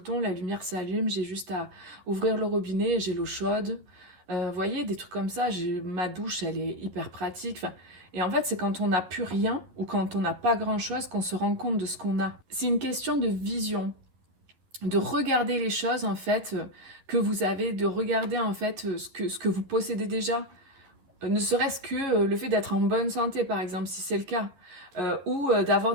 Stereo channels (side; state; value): left; late; 11 ms